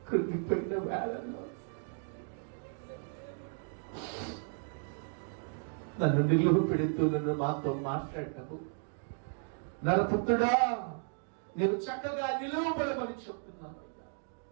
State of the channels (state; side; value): silent; left; 55 dB below the other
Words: కృంగిపోయిన వేళల్లో నన్ను నిలువ పెడుతూ నన్ను మాతో మాట్లాడటము, నరపుత్రుడా నేను చక్కగా నిలువబడమని చెప్తున్నాను.